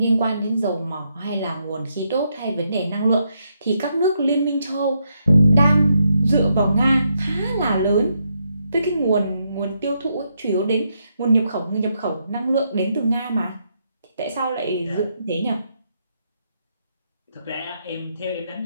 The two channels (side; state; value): both; inverted; correlation -0.79